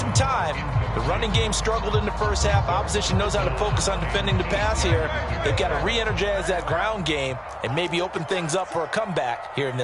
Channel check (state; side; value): identical; both; correlation 1.00